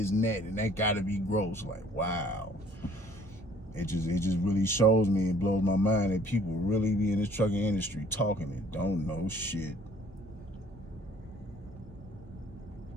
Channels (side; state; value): both; normal; correlation 0.56